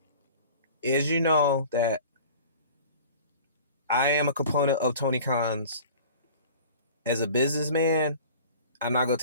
As you know that I am a component of Tony Khan's as a businessman. I'm not gonna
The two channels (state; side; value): inverted; both; correlation -0.43